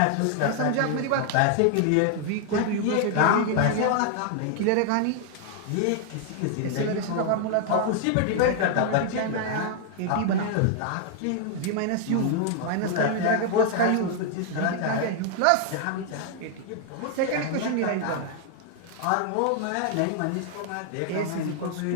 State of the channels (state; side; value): different; both; correlation 0.00